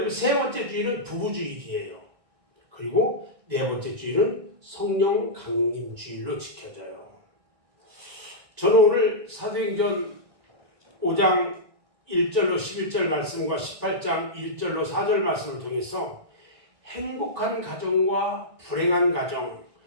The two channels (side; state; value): left; late; 1.6 ms